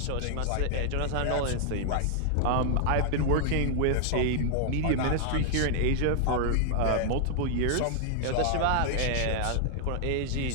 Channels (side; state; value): both; different; correlation -0.01